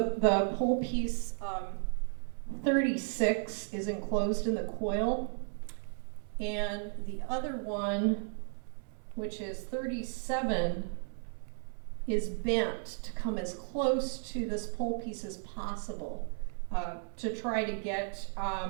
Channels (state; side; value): silent; left; 55 dB below the other